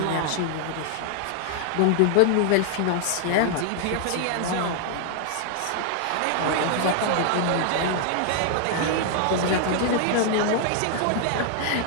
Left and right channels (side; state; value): both; different; correlation 0.00